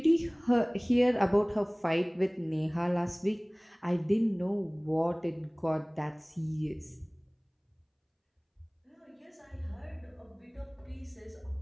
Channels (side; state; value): both; identical; correlation 1.00